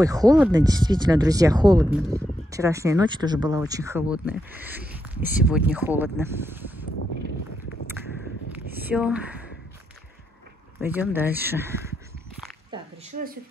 холодно, действительно, друзья, холодно. Вчерашняя ночь тоже была очень холодная. И сегодня холодно. Все. Пойдем дальше. Так, решила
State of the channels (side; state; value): both; normal; correlation 0.82